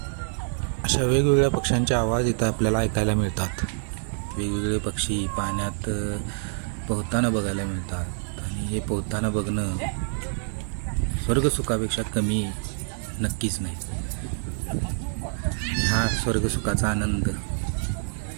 अशा वेगवेगळ्या पक्ष्यांचे आवाज इथं आपल्याला ऐकायला मिळतात. वेगवेगळे पक्षी पाण्यात पोहताना बघायला मिळतात आणि हे पोहताना बघणं स्वर्गसुखापेक्षा कमी नक्कीच नाही. हा स्वर्गसुखाचा आनंद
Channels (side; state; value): left; silent; digital silence